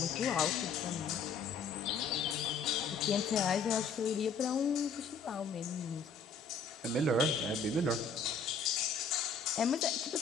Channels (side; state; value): right; quieter; 5.0 dB